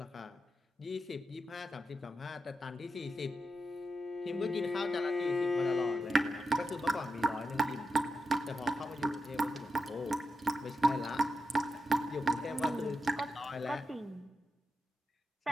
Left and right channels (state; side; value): normal; both; correlation 0.88